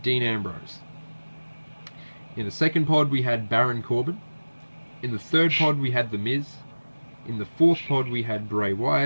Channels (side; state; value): both; inverted; correlation -1.00